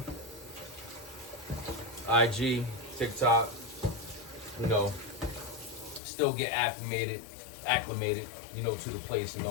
IG, TikTok, you know, still get acclimated, you know, to the place and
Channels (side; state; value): right; drops out; at 6.0 s